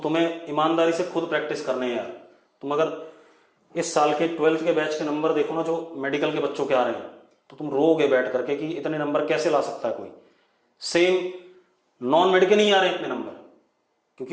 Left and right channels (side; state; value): both; identical; correlation 1.00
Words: ईमानदारी से खुद प्रैक्टिस करने हैं यार। तुम अगर इस साल के 12th के बैच के नंबर देखो ना, जो मेडिकल के बच्चों के आ रहे हैं, तो तुम रोगे बैठ करके कि इतने नंबर कैसे ला सकता है कोई। सेम नॉन मेडिकल नहीं आ रहे इतने नंबर,